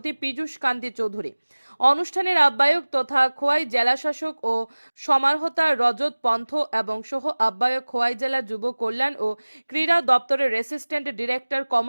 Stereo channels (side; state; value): both; inverted; correlation -1.00